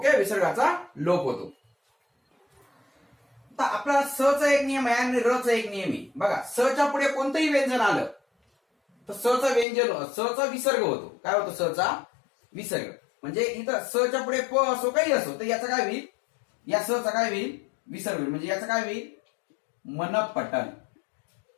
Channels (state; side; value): drops out; right; at 9.7 s